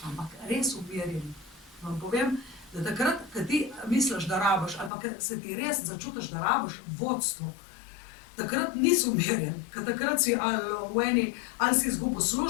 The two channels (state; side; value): drops out; right; at 4.9 s